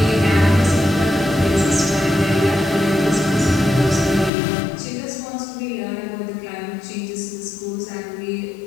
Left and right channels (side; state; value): right; drops out; at 4.3 s